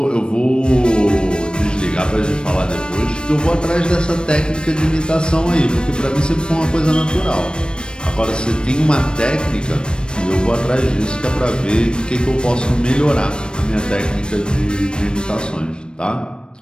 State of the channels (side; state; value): right; late; 0.053 ms